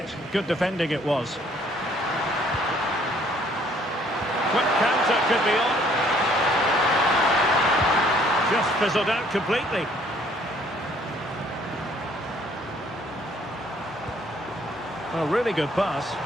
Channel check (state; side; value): normal; both; correlation 0.61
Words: Good defending it was. Quick counter could be on. Just fizzled out completely. A really good pass.